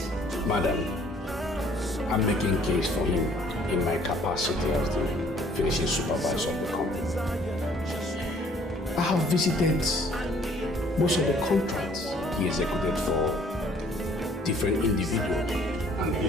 Madam, I'm making case for him in my capacity as the finishing supervisor of the company. I have visited most of the contracts he executed for different individuals and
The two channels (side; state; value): both; normal; correlation 0.59